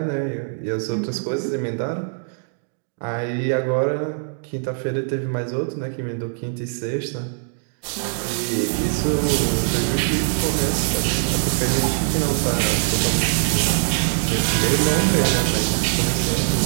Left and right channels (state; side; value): silent; left; digital silence